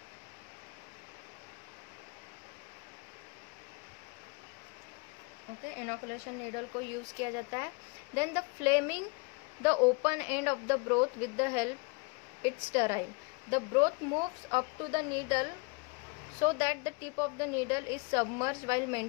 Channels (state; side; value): quieter; right; 30.6 dB